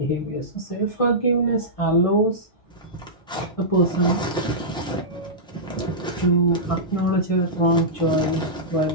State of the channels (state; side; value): normal; both; correlation -0.14